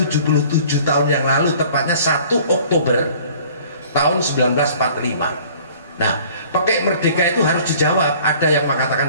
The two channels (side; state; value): both; inverted; correlation -0.51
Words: tahun yang lalu, tepatnya 1 Oktober tahun 1945. Nah, pakai merdeka itu harus dijawab. Ada yang